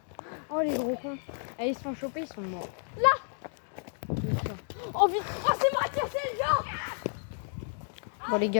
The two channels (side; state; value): right; silent; digital silence